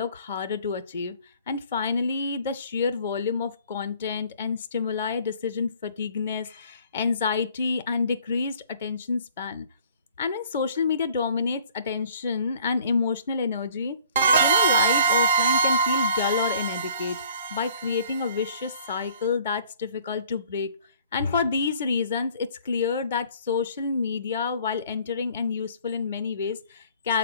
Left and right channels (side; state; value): both; inverted; correlation -0.55